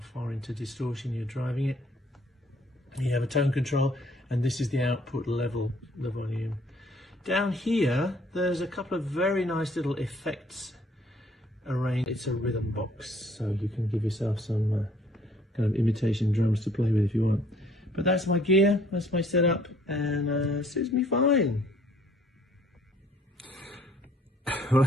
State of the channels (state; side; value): normal; both; correlation 0.61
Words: into distortion you're driving it. You have a tone control, and this is the output level, the volume. Down here there's a couple of very nice little effects arranged. It's a rhythm box, so you can give yourself some kind of imitation drums to play with if you want. But that's my gear, that's my setup, and suits me fine. Well, I